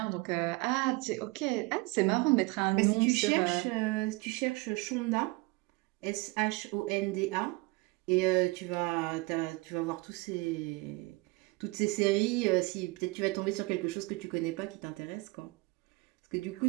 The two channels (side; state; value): left; quieter; 24.8 dB